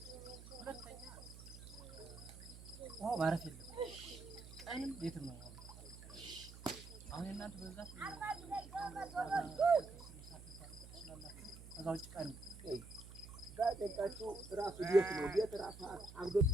ማረፍ የለም ቀንም የትም ነው። አሁን እናንተ በዛት ከዛ ውጭ ቀን ጋጤቃችሁ ራሱ ቤት ነው። ቤት ራሱ አብዶ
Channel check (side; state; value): right; noise; hum, 16 dB below the sound